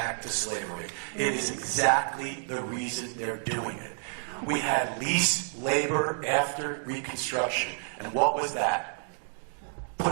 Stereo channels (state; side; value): silent; left; digital silence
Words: to slavery. It is exactly the reason they're doing it. We had lease labor after Reconstruction. And what was that?